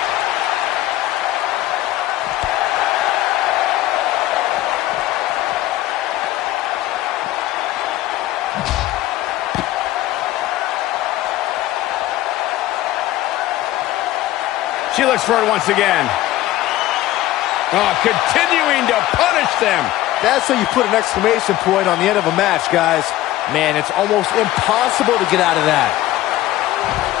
She looks for it once again. Oh, continuing to punish them. That's how you put an exclamation point on the end of a match, guys. Man, it's almost impossible to get out of that.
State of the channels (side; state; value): right; quieter; 15.3 dB